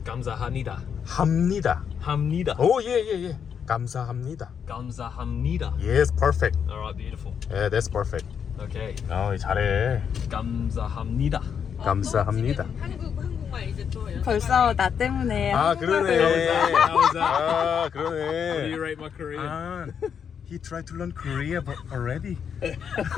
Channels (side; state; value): right; quieter; 7.4 dB